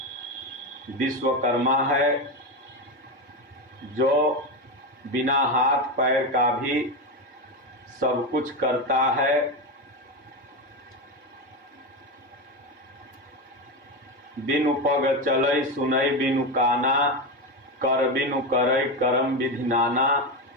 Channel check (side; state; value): both; normal; correlation 0.15